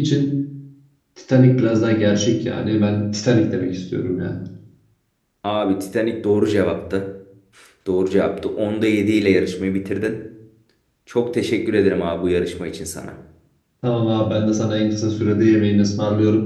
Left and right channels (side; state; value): both; identical; correlation 1.00